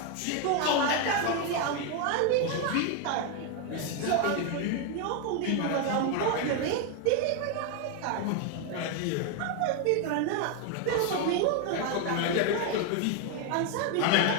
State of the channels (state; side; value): different; both; correlation 0.01